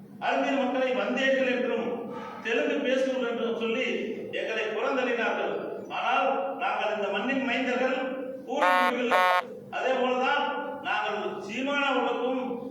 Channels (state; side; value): identical; both; correlation 1.00